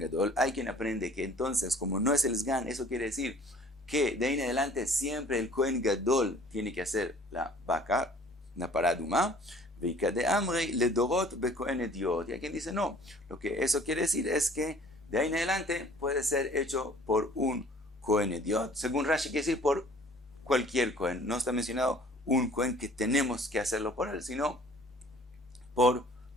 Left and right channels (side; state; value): both; normal; correlation 0.52